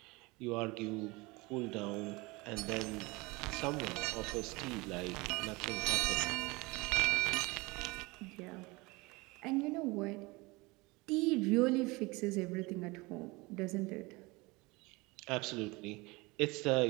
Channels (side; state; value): left; quieter; 24.2 dB